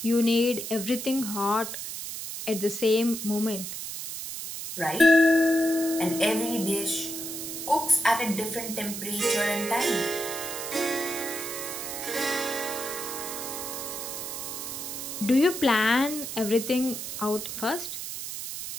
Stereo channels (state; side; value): noise; right; hiss, 7 dB below the sound